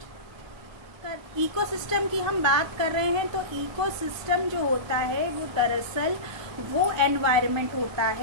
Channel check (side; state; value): left; late; 1.3 ms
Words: इकोसिस्टम की हम बात कर रहे हैं तो इकोसिस्टम जो होता है वो दरअसल वो एनवायरनमेंट होता